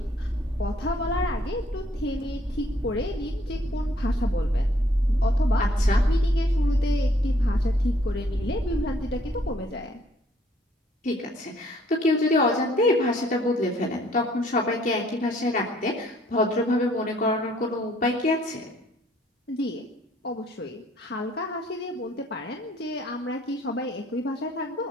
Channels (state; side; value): normal; both; correlation 0.63